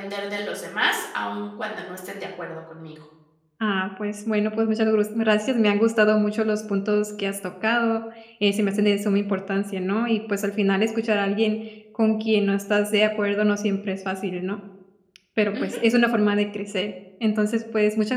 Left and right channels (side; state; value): both; identical; correlation 1.00